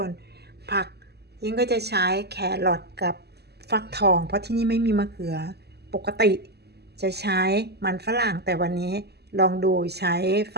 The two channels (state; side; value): late; left; 0.47 ms